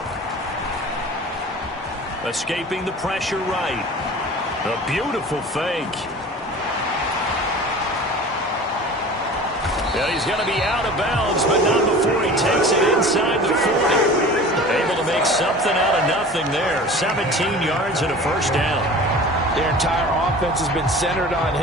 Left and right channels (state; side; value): normal; both; correlation 0.40